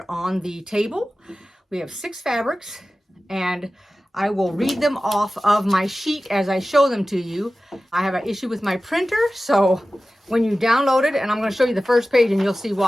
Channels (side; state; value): both; normal; correlation 0.95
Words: on the table. We have 6 fabrics and I will read them off of my sheet as I show them to you. I have an issue with my printer, so when you download it, and I'm going to show you the first page and you'll see